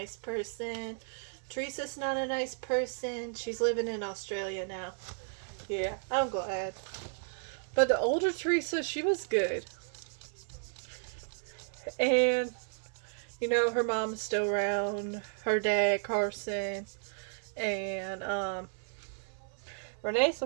person. Teresa's not a nice person. She's living in Australia now. Yeah, I'm glad. But the older Teresa, she was good. And, you know, her mom's still around. Her dad, Carson. And, Renee's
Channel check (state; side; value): silent; left; 55 dB below the other